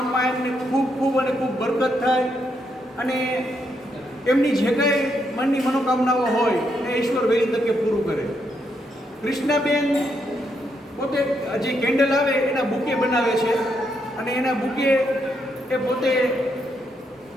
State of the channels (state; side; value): normal; both; correlation 0.78